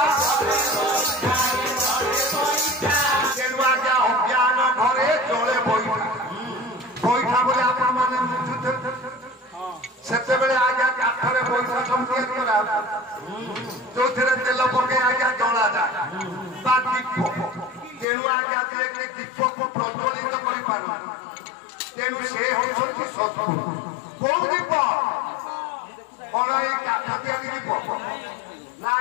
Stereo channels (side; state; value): right; drops out; at 18.1 s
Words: ତେଣୁ ଆଜ୍ଞା ଅଜ୍ଞାନ ଘରେ ଚଳେ ବଇଠା। ବଇଠା ବୋଲି ଆପଣ ମାନେ ବୁଝୁଥିବେ। ସେତେବେଳେ ଆଜ୍ଞା କାଠରେ ବଇଠା ସବୁ ତିଆରି କରା, ଯୋଉଥିରେ ତେଲ ପକେଇ ଆଜ୍ଞା ଜଳାଯାଏ ବା ଦୀପ। ତେଣୁ ଆଜ୍ଞା ଯିଏକି ଦୀପକୁ ପ୍ରଜ୍ୱଳିତ କରିପାରୁ, ତେଣୁ ସେ ହେଉଛନ୍ତି ସଦଗୁରୁ। କୋଉ ଦୀପ? କଣ ଏଇ କାଠ ତିଆରି ଦୀପ ନା